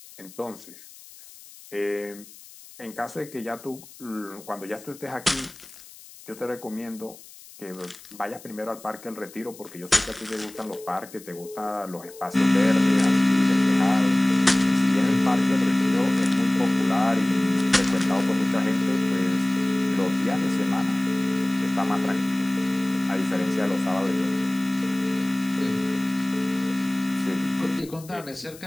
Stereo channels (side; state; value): left; noise; hiss, 20 dB below the sound